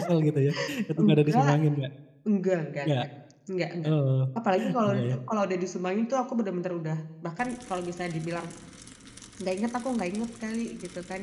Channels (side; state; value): both; identical; correlation 1.00